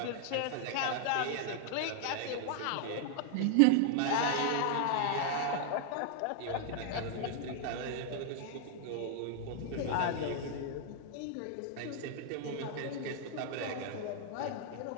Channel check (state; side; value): different; both; correlation 0.00